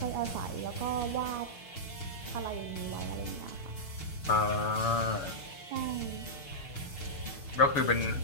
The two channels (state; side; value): late; right; 6.5 ms